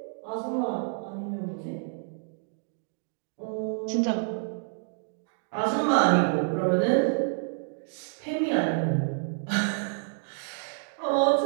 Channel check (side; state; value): left; silent; digital silence